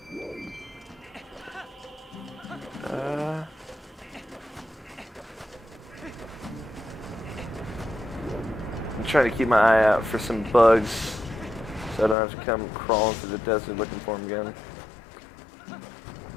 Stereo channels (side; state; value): right; drops out; at 12.2 s